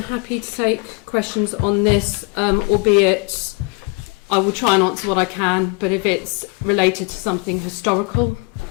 happy to take questions on this, albeit I will try and answer what I can, but if it's related to something historical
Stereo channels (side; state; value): right; quieter; 27.9 dB